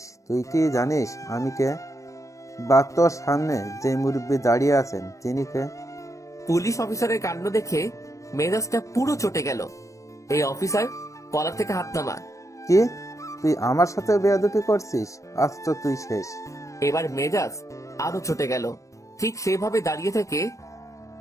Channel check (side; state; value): right; late; 0.15 ms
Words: তুই কি জানিস আমি কে? বা তোর সামনে যে মুরব্বী দাঁড়িয়ে আছেন তিনি কে? পুলিশ অফিসারের কাণ্ড দেখে মেজাজটা পুরো চটে গেল। এই অফিসার, কলার থেকে হাত নামা। কি, তুই আমার সাথে বেয়াদবি করছিস? আজ তো তুই শেষ। এবার মেজাজ আরো চটে গেল। ঠিক সেভাবে দাঁড়িয়ে থেকে